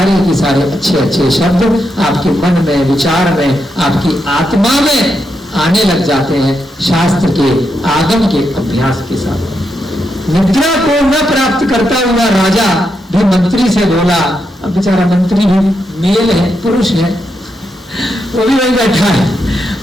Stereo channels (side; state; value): both; normal; correlation 0.83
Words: के सारे अच्छे अच्छे शब्द आपके मन में, विचार में, आपकी आत्मा में आने लग जाते हैं शास्त्र के आगम के अभ्यास के साथ। निद्रा को न प्राप्त करता हुआ राजा भी मंत्री से बोला। अब बेचारा मंत्री भी मेल है, पुरुष है, वो भी वही बैठा है।